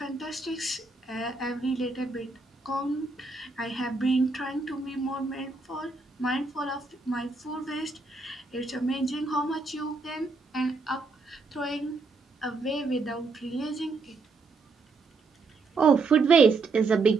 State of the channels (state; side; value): quieter; left; 3.9 dB